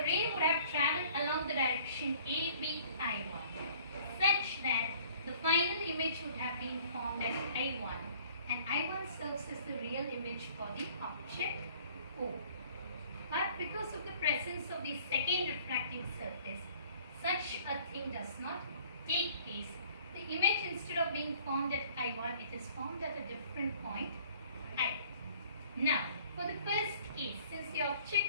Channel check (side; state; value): both; inverted; correlation -0.55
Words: would have travelled along the direction ABI1 such that the final image would have been formed as I1 and I1 serves as the real image for the object O. But because of the presence of the second refracting surface, such a thing does not take place. The image, instead of being formed at I1, it is formed at a different point I. Now, for the first case, since the